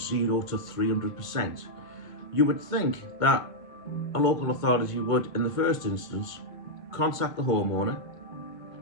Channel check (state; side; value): late; right; 1.5 ms